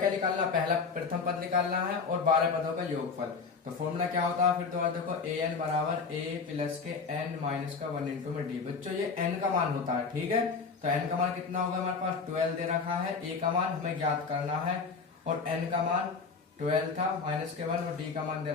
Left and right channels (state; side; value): quieter; right; 5.0 dB